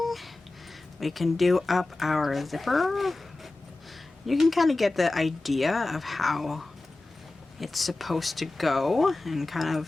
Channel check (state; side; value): quieter; right; 3.0 dB